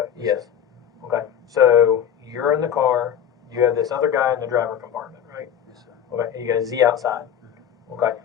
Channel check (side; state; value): right; quieter; 9.0 dB